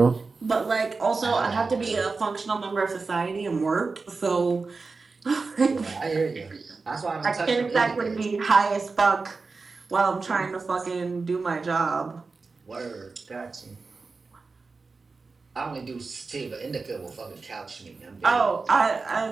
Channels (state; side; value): quieter; left; 4.2 dB